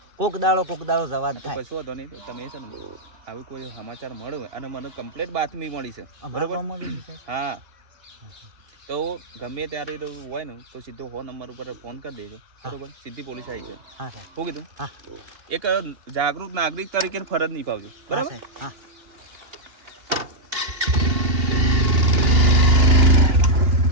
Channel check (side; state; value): left; late; 2.8 ms